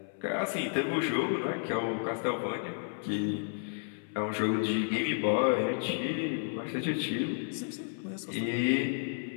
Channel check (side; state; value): right; silent; 56 dB below the other